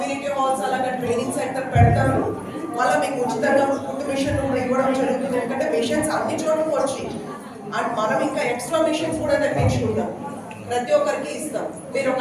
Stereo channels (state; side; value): identical; both; correlation 1.00